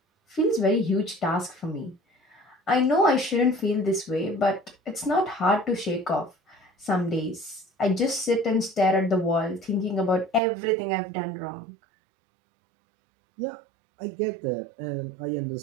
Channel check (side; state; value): left; drops out; at 10.4 s